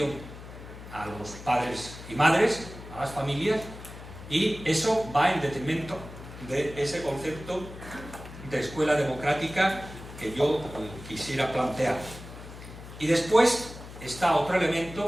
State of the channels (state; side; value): noise; left; hum, 14 dB below the sound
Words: a los padres y madres, a las familias, y eso va en detrimento de ese concepto de escuela democrática que yo quisiera plantear. Y después está otro